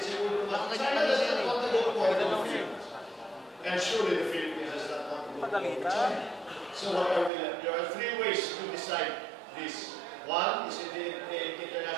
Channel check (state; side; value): drops out; left; at 7.3 s